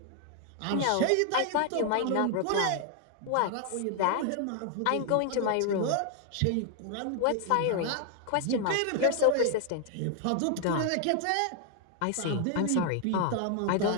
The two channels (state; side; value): different; both; correlation 0.00